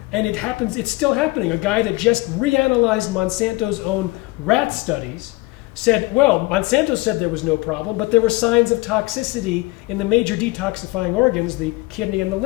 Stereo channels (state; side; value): quieter; right; 22.2 dB